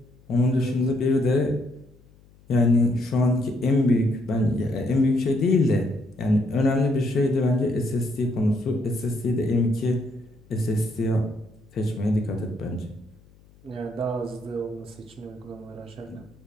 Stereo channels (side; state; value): left; noise; hum, 28 dB below the sound